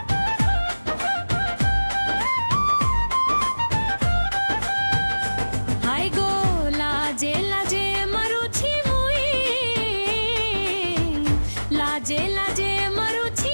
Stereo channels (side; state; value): both; inverted; correlation -1.00